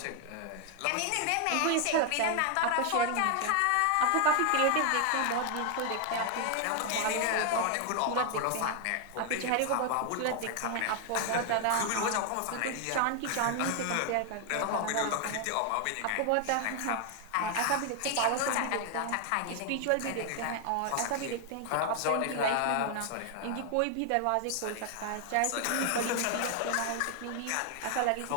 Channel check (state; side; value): different; both; correlation 0.00